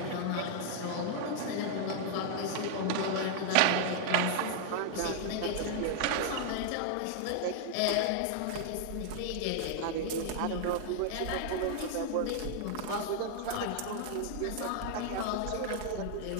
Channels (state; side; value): different; both; correlation 0.00